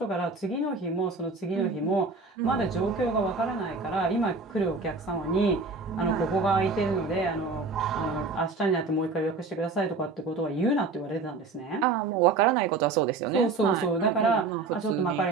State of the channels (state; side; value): quieter; left; 4.0 dB